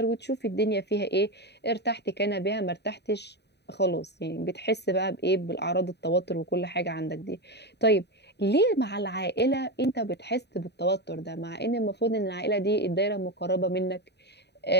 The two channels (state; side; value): late; right; 0.49 ms